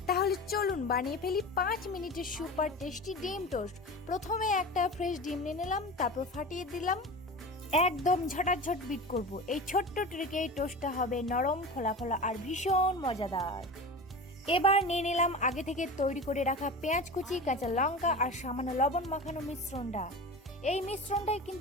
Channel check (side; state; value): both; normal; correlation 0.30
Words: তাহলে চলুন বানিয়ে ফেলি 5 মিনিটের সুপার টেস্টি ডিম টোস্ট। প্রথমে একটা ফ্রেশ ডিম নিয়ে নিলাম, তারপর ফাটিয়ে দিলাম। একদম ঝটাঝট বিট করব। এই ছোট্ট ট্রিকে এই টোস্টটা হবে নরম, ফোলা ফোলা আর ভীষণ মজাদার। এবার নিয়ে নিলাম আগে থেকে তৈরি করে রাখা পেঁয়াজ কুচি, কাঁচা লঙ্কা আর সামান্য লবণ মাখানো মিশ্রণটা। এই মিশ্রণটাই